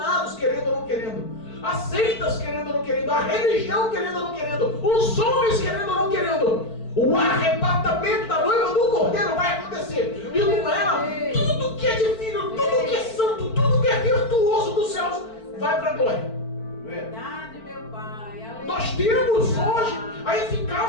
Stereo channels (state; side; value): late; right; 4.5 ms